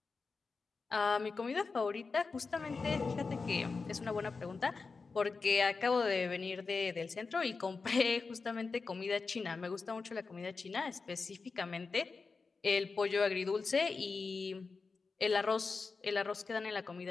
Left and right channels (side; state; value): right; quieter; 4.4 dB